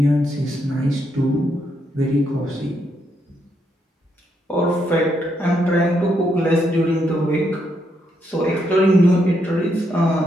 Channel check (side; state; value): both; normal; correlation 0.78